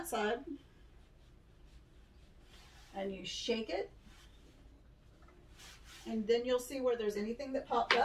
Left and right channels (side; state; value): both; identical; correlation 1.00